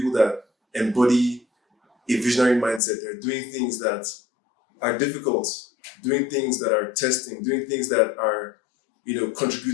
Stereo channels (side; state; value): right; drops out; at 2.8 s